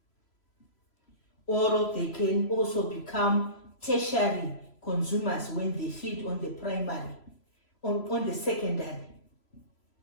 Or they can also become tertiary consumers when they feed on the primary, on the secondary.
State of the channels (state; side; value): late; right; 3.0 ms